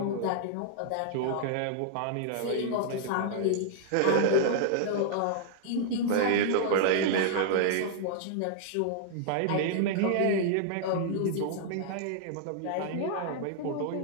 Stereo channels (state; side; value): different; both; correlation -0.01